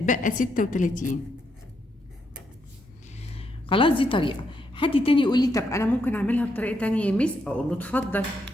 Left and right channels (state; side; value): normal; both; correlation 0.78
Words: 36. خلاص دي طريقة. حد تاني يقول لي طب انا ممكن اعملها بطريقة تانية يا مس؟ اقول له اتفضل.